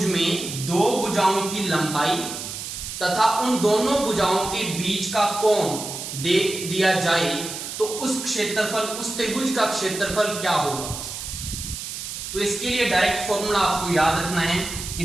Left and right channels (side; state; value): right; noise; hiss, 7 dB below the sound